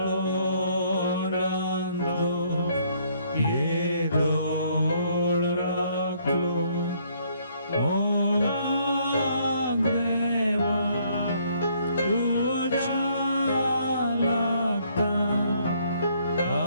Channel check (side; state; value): both; inverted; correlation -0.66